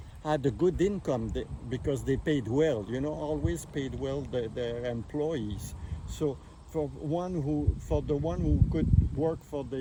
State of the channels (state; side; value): identical; both; correlation 1.00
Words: had a good income because they paid well. You know, always paid well their employees. So for the one who could work for